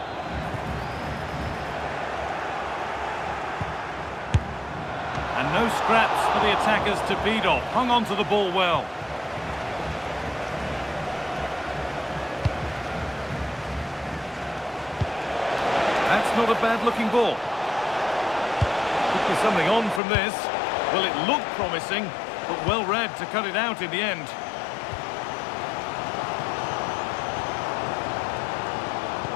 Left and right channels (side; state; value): right; drops out; at 20.0 s